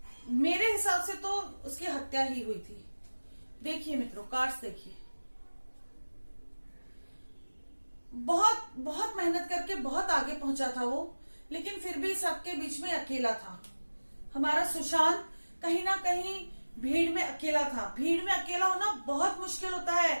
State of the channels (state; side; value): inverted; both; correlation -1.00